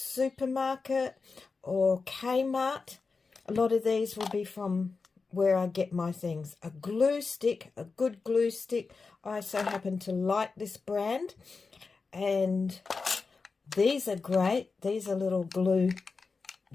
or Kmart. A lot of these will be from where I get my things. A glue stick, a good glue stick. I so happen to like this brand. And these are great. These are little glue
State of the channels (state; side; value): quieter; right; 4.5 dB